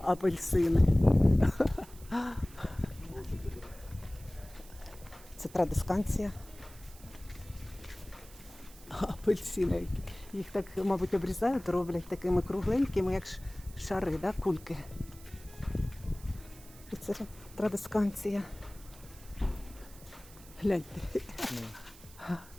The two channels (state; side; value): noise; right; hiss, 21 dB below the sound